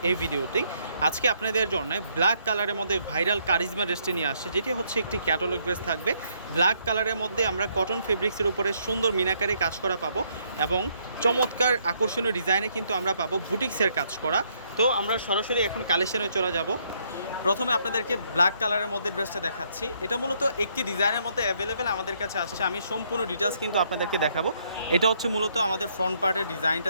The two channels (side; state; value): both; inverted; correlation -0.71